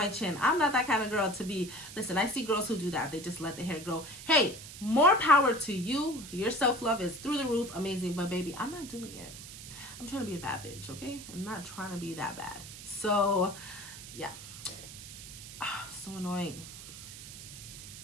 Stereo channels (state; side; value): noise; right; hiss, 13 dB below the sound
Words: I'm not that kind of girl to be. Listen, I see girls who do that. They just let the hair grow. Hey, more power to you. Your self-love is through the roof. Amazing. But baby, I'm not doing it. I'm trying to be a bad bitch, okay? I'm not trying to be that bad. So, yeah. So annoying.